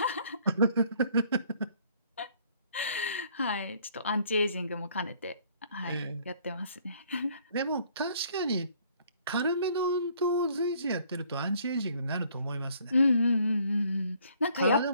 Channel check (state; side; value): inverted; both; correlation -0.61